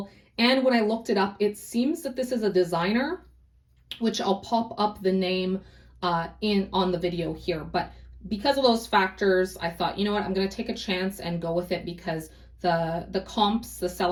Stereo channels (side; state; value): both; identical; correlation 1.00